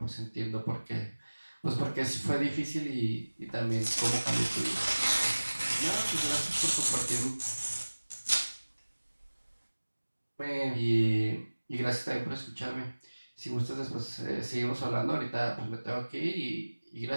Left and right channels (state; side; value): inverted; both; correlation -1.00